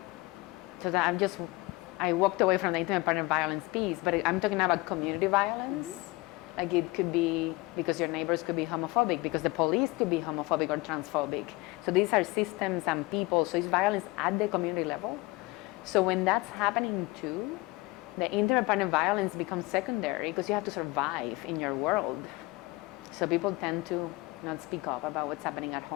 so that I walked away from the intimate partner violence piece, but I'm talking about community violence. Like it could be because your neighbors could be homophobic, because the police could be homophobic or transphobic. So these are systems and people, so it's violence at the community level. So when that's happening too, the intimate partner violence becomes secondary because you have to survive in your world. So people tend to not speak up about what's happening at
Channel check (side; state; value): right; quieter; 22.6 dB